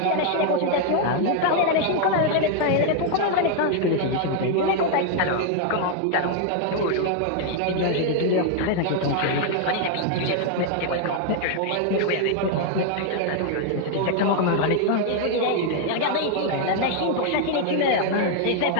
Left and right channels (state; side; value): different; both; correlation 0.00